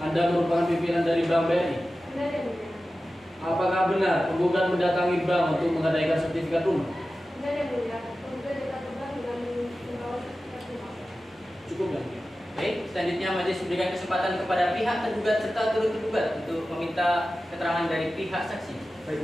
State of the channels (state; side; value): normal; both; correlation 0.94